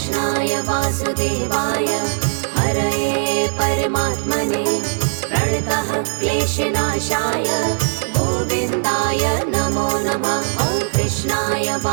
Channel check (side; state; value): left; silent; digital silence